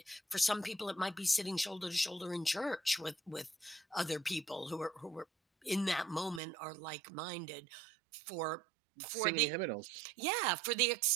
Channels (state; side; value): drops out; left; at 6.4 s